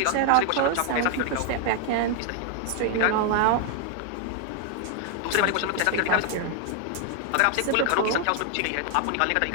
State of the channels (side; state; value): both; different; correlation 0.00